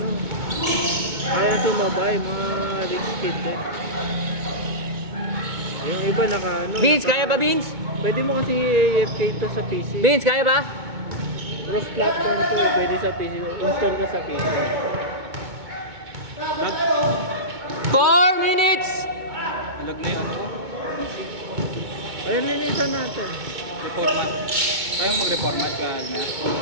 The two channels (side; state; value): left; late; 2.2 ms